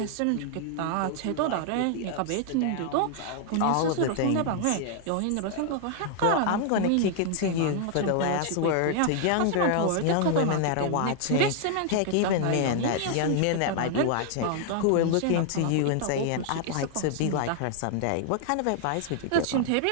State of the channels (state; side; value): different; both; correlation 0.00